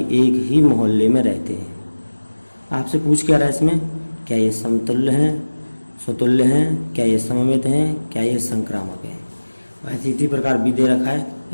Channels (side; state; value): both; inverted; correlation -1.00